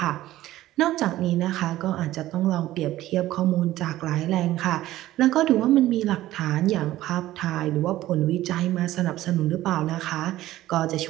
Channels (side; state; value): left; quieter; 15.1 dB